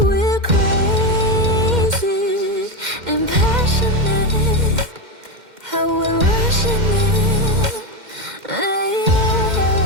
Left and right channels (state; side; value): late; left; 2.1 ms